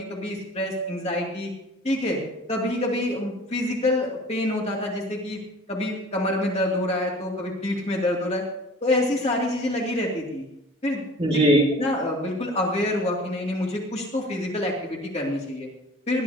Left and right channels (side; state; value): both; normal; correlation 0.45